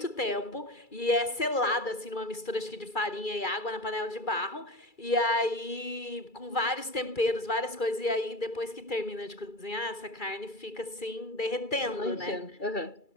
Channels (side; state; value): right; late; 2.3 ms